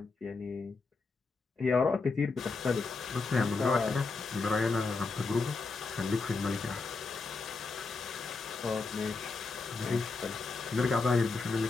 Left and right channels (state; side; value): quieter; right; 4.1 dB